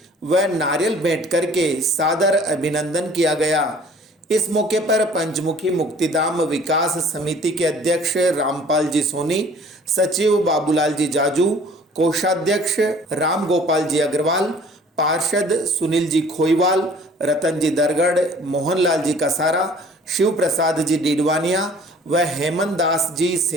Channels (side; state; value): both; normal; correlation 0.52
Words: व नारियल भेंट करके सादर अभिनंदन किया गया। इस मौके पर पंचमुखी मुक्तिधाम विकास समिति के अध्यक्ष रामपाल जी सोनी, सचिव बाबूलाल जी जाजू, कोषाध्यक्ष राम गोपाल जी अग्रवाल, पार्षद सुनील जी खोईवाल, रतन जी दरगढ़, मोहनलाल जी कसारा, शिव प्रसाद जी डीडवानिया व हेमंत दास जी